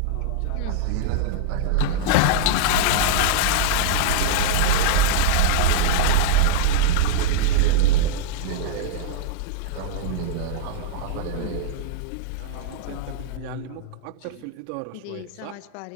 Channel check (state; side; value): different; both; correlation -0.02